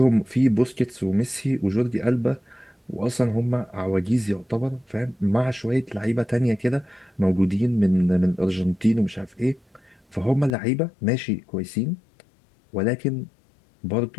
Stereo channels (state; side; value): drops out; right; at 10.5 s